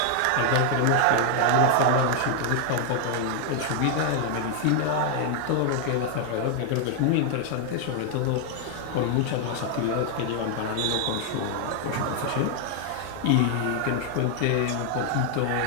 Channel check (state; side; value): different; both; correlation 0.00